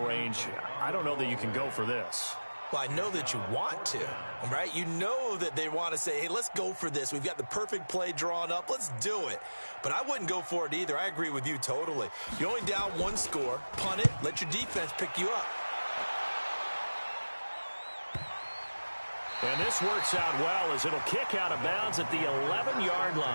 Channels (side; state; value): both; inverted; correlation -1.00